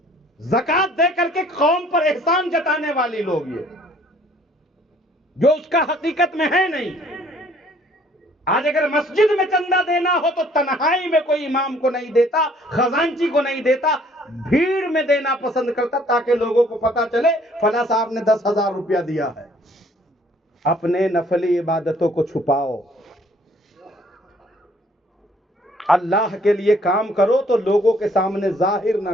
زکوٰۃ دے کر کے قوم پر احسان جتانے والی لوگ یہ، جو اس کا حقیقت میں ہے نہیں۔ آج اگر مسجد میں چندہ دینا ہو تو تنہائی میں کوئی امام کو نہیں دیتا، خزانچی کو نہیں دیتا، بھیڑ میں دینا پسند کرتا تاکہ لوگوں کو پتا چلے فلاں صاحب نے 10,000 روپیہ دیا ہے۔ اپنے نفلی عبادتوں کو چھپاؤ، اللہ کے لیے کام کرو تو لوگوں کے سامنے ظاہر نہ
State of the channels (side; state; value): both; normal; correlation 0.60